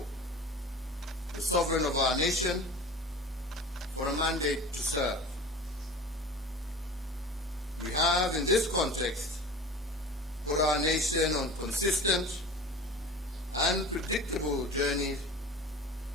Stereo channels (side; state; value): both; normal; correlation 0.37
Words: the sovereign of our nation, for a mandate to serve. We have, in this context, put our nation on consistent and predictable journey